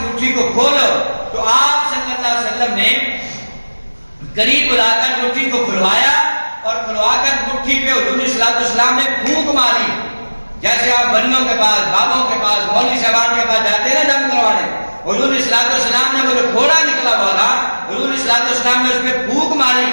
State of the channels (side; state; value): both; inverted; correlation -1.00